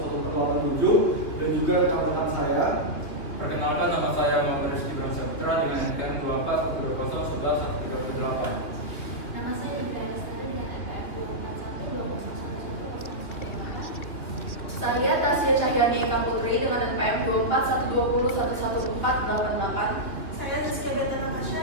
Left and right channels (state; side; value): late; right; 3.0 ms